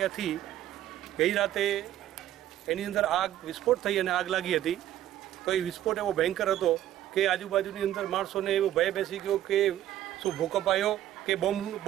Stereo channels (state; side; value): quieter; left; 12.6 dB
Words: ગઈ રાતે એની અંદર આગ વિસ્ફોટ થઈ અને આગ લાગી હતી। તો એ વિસ્ફોટ એવો ભયંકર હતો કે આજુબાજુની અંદર માણસોને એવો ભય બેસી ગયો કે શું ભૂકંપ આવ્યો કે